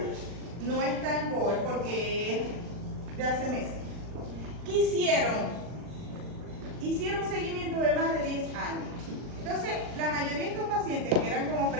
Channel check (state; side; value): late; left; 40 ms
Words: no está en GOL porque es de hace meses. ¿Qué hicieron? Hicieron un seguimiento de más de 10 años. Entonces, la mayoría de estos pacientes que eran como